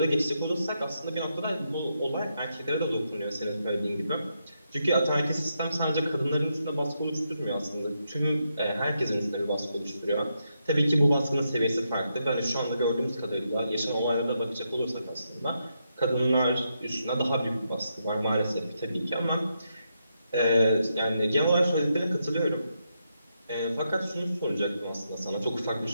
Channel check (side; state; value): both; inverted; correlation -0.82